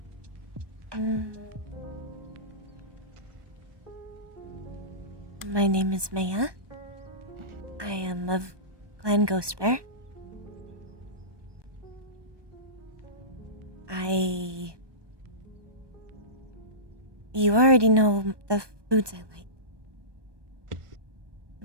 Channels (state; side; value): late; left; 1.2 ms